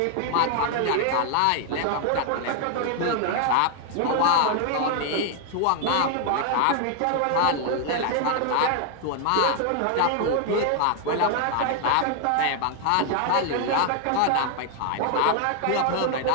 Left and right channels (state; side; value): different; both; correlation 0.00